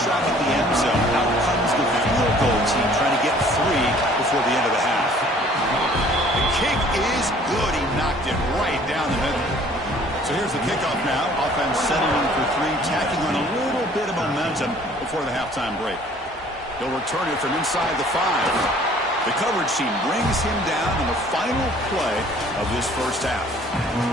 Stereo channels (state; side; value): normal; both; correlation 0.55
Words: shot at the end zone. Out comes the field goal team trying to get 3 before the end of the half. The kick is good. He knocked it right down the middle. So here's the kickoff now. Offense settling for 3, tacking on a little bit of momentum before the halftime break. They'll return it from inside the 5. The coverage team brings him down in the final play of this first half.